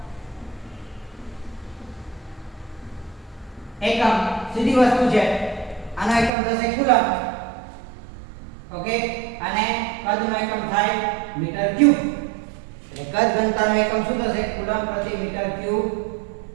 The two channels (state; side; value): drops out; left; at 6.3 s